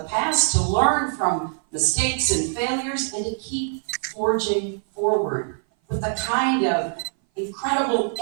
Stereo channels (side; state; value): left; silent; 58 dB below the other